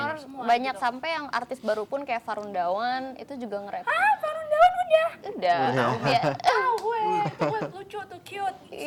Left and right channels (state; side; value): identical; both; correlation 1.00